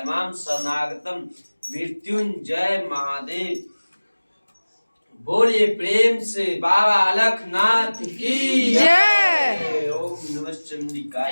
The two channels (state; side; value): inverted; both; correlation -1.00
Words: शरणागतम मृत्युंजय महादेव। बोलिए प्रेम से बाबा अलखनाथ की जय। ओम नमः